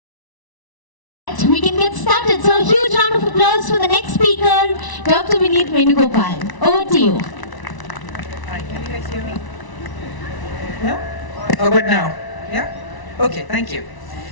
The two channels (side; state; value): right; late; 1.0 ms